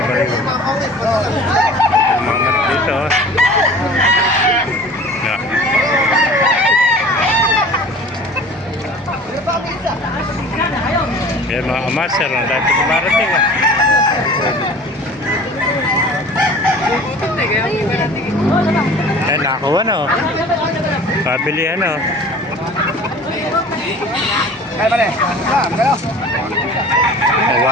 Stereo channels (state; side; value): normal; both; correlation 0.43